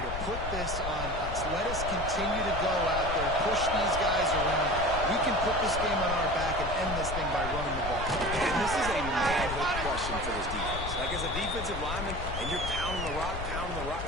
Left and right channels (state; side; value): noise; left; rumble, 6 dB below the sound